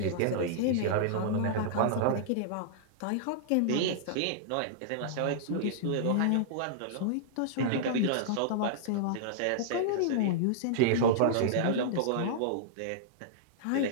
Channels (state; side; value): different; both; correlation -0.02